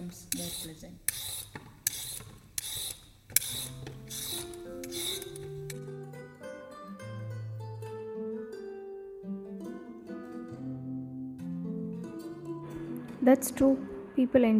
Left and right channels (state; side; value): identical; both; correlation 1.00